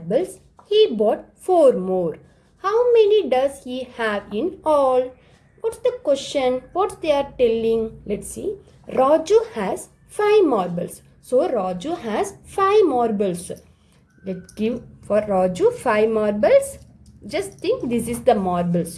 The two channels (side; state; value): both; identical; correlation 1.00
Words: He bought 4 more. How many does he have in all? What's the question? What they are telling? Let's see. Raju has 5 marbles. So Raju has 5 marbles. Let's give for Raju 5 marbles. Just think this is the